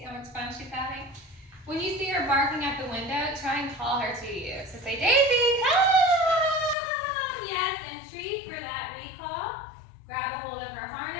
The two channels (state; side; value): drops out; right; at 6.8 s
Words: how much fun she's having? When you see her barking at the window, try and call her to you. So say, Daisy, come! Yes, and treat for that recall. Grab a hold of her